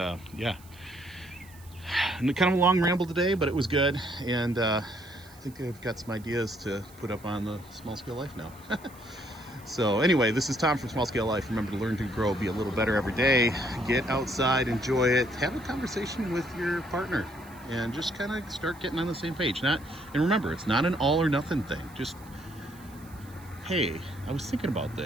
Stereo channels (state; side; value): noise; right; hiss, 24 dB below the sound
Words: yeah, and kind of a long ramble today, but it was good. And I think I've got some ideas to put up on the Small Scale Life now. So anyway, this is Tom from Small Scale Life. Remember to learn to grow, be a little better every day. Get outside, enjoy it, have a conversation with your partner, and just kind of start getting on the same page. And remember, it's not an all or nothing thing. Just, hey, I was thinking about